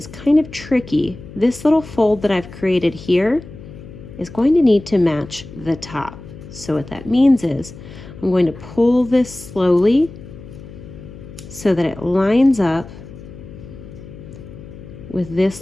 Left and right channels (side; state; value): left; noise; hum, 16 dB below the sound